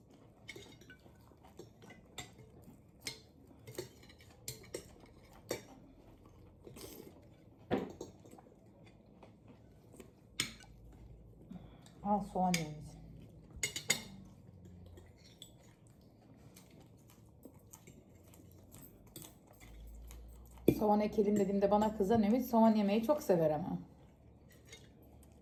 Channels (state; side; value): identical; both; correlation 1.00